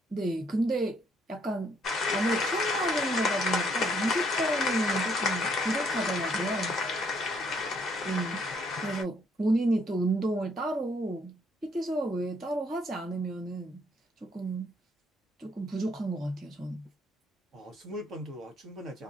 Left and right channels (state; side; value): normal; both; correlation 0.69